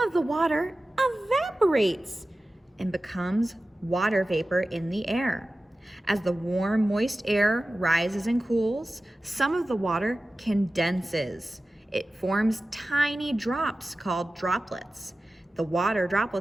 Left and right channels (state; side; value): normal; both; correlation 0.95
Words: the water evaporates and becomes water vapor in the air. As the warm, moist air rises and cools, some of the water condenses. It forms tiny drops called droplets. The water